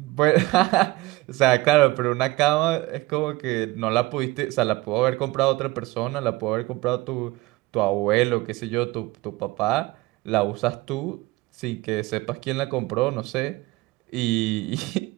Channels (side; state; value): left; quieter; 20.3 dB